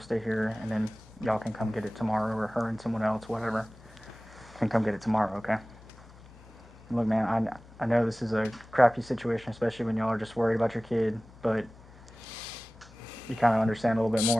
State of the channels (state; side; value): normal; both; correlation 0.98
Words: here, and then y'all can come get it tomorrow, or her and someone else, whatever, can come get it tomorrow. Okay. Look, man, I know this is a crappy situation, especially when y'all are just worried about your kid, but you kind of understand a little bit